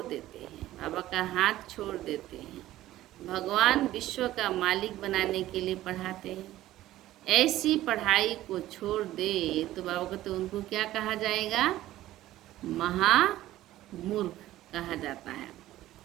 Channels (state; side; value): quieter; left; 14.9 dB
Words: देते हैं, बाबा का हाथ छोड़ देते हैं। भगवान विश्व का मालिक बनाने के लिए पढ़ाते हैं। ऐसी पढ़ाई को छोड़ दे तो बाबा को तो उनको क्या कहा जाएगा? महामूर्ख कहा जाता है।